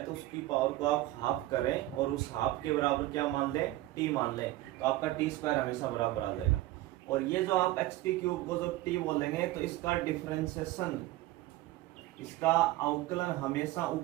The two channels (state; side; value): quieter; left; 16.9 dB